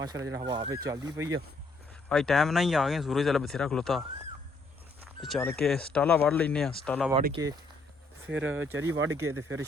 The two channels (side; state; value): right; quieter; 3.2 dB